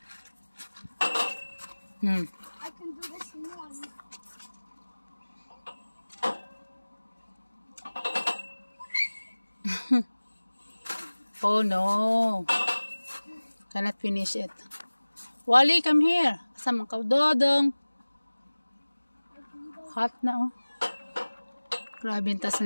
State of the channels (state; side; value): inverted; both; correlation -1.00